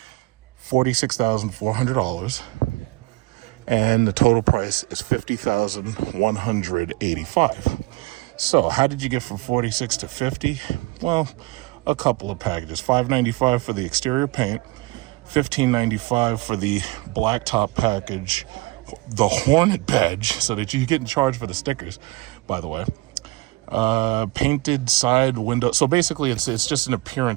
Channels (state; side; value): quieter; left; 22.8 dB